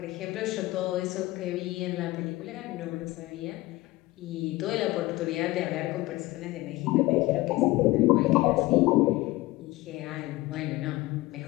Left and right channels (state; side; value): quieter; right; 19.5 dB